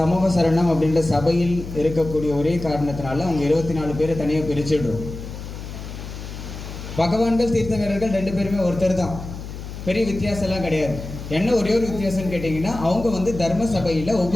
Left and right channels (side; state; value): left; noise; hum, 10 dB below the sound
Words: சமூக சரணம் அப்படின்ற சபையில் இருக்கக்கூடிய ஒரே காரணத்தினால அவங்க 24 பேரை தனியாக பிரிச்சுடுறோம். பகவான்கள் தீர்த்தங்கரர்கள் 2 பேருமே ஒருத்தர் தான், பெரிய வித்தியாசம்லாம் கிடையாது. என்ன ஒரே ஒரு வித்தியாசம்னு கேட்டிங்கன்னா, அவங்க தர்ம சபையில்